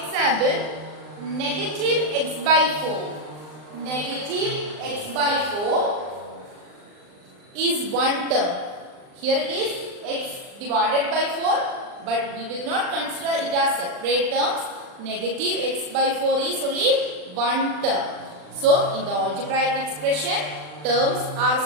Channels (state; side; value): late; left; 39 ms